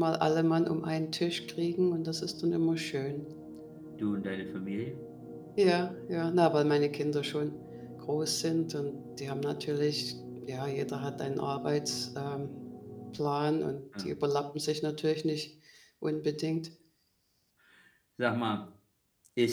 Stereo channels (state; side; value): identical; both; correlation 1.00